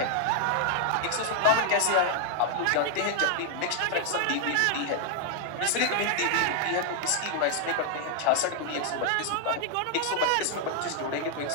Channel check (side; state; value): both; different; correlation 0.00